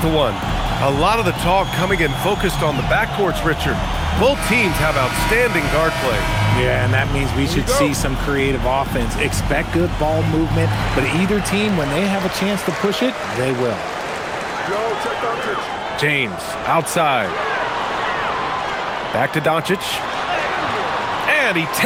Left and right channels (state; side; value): identical; both; correlation 1.00